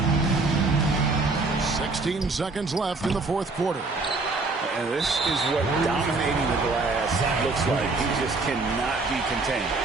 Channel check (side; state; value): left; quieter; 3.6 dB